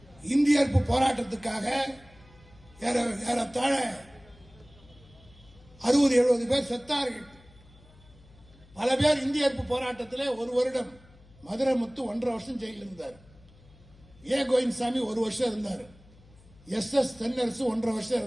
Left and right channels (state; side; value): noise; left; hum, 25 dB below the sound